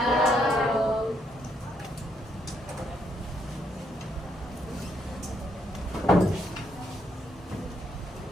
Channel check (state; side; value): normal; both; correlation 0.74